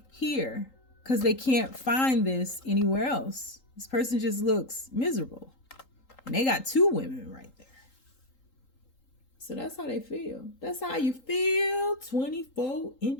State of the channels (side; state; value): right; late; 3.8 ms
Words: here, because they can't find this anywhere else. This person just looks miserable, and they got two women right there. So that's how they feel. That's how you feel. 24